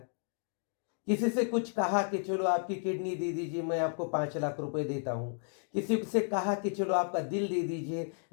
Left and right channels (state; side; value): silent; right; digital silence